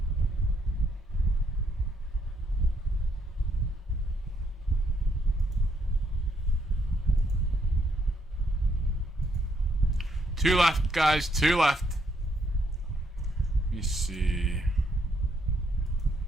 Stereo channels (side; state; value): both; normal; correlation 0.73